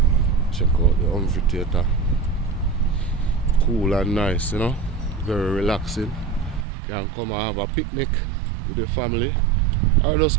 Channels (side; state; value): left; drops out; at 6.7 s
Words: Check out the amphitheater. Cool and nice, you know, very relaxing. You can come and have a picnic with your family or